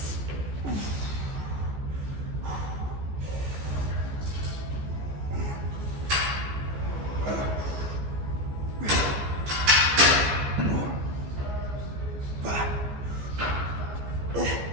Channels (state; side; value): late; left; 14 ms